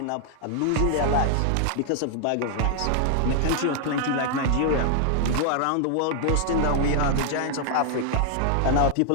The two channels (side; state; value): both; different; correlation 0.00